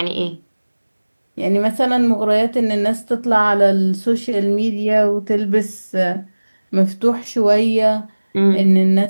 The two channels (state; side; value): inverted; both; correlation -1.00